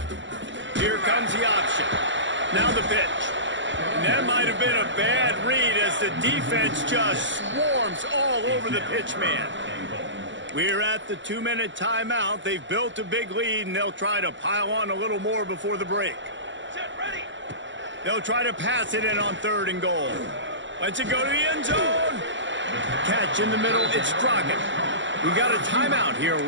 Here comes the option. Now the pitch. And that might have been a bad read as the defense just swarms all over the pitch man. We're at the 2-minute timeout. They've built a big lead, and they'll try to pile on a little more before the break. Set, ready. They'll try to pass it in on 3rd and goal. Let's it go to the end zone. Catch in the middle. It's Trojans. We got a timeout here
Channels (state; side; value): late; left; 0.54 ms